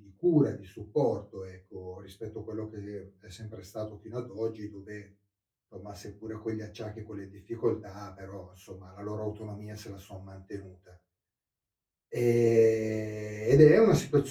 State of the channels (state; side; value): identical; both; correlation 1.00